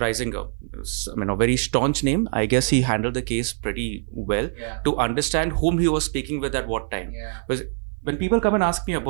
I mean, a very staunch name. I guess he handled the case pretty well to understand whom he was speaking with at what time. Because when people come and ask me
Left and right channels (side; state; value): left; silent; 56 dB below the other